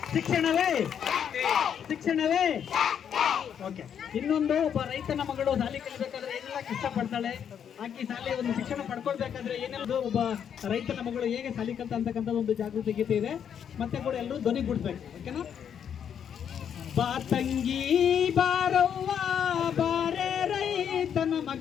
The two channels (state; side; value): quieter; right; 8.4 dB